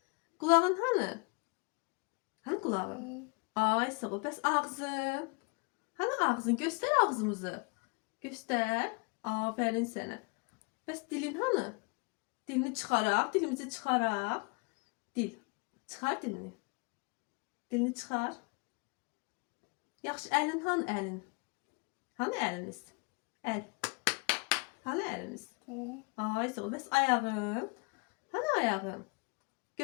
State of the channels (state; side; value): quieter; right; 31.8 dB